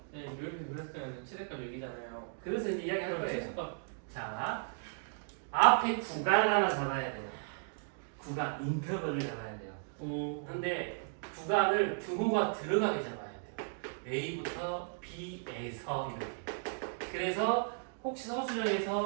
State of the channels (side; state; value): left; silent; digital silence